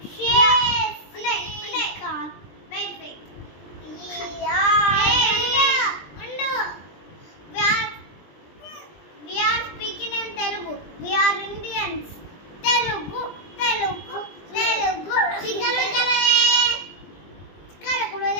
We are speaking in Telugu. We are Indians. Telugu.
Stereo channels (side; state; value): right; late; 20 ms